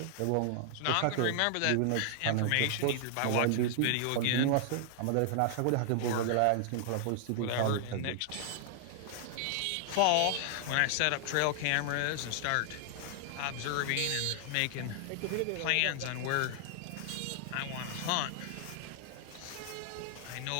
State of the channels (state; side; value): different; both; correlation -0.01